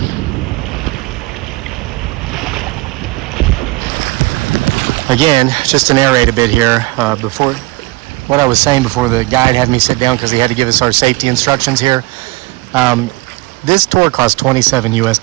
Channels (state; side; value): quieter; left; 22.8 dB